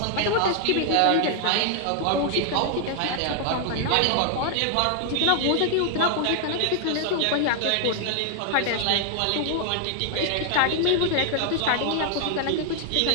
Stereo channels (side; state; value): both; different; correlation 0.00